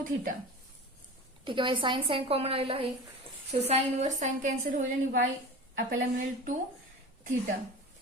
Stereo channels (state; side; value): normal; both; correlation 0.34